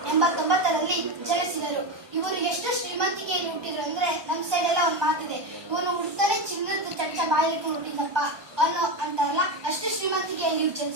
ಜನಿಸಿದರು. ಇವರು ಎಷ್ಟು ಶ್ರೀಮಂತಿಕೆಯಲ್ಲಿ ಹುಟ್ಟಿದ್ರು ಅಂದ್ರೆ ನಮ್ಮ ಸೈಡ್ ಎಲ್ಲ ಒಂದು ಮಾತಿದೆ, ಇವನು ಹುಡ್ತಾನೆ ಚಿನ್ನದ ಚಮಚ ಬಾಯಿಲಿಟ್ಟು ಹುಟ್ಟಿದಪ್ಪ ಅನ್ನೋ ಅಂತಾರಲ್ಲ, ಅಷ್ಟು ಶ್ರೀಮಂತಿಕೆಯಲ್ಲಿ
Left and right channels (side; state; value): left; late; 1.2 ms